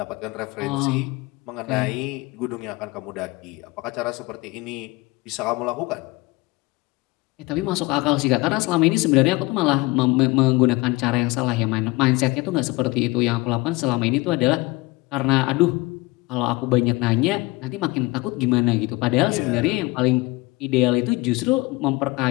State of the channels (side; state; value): right; quieter; 22.1 dB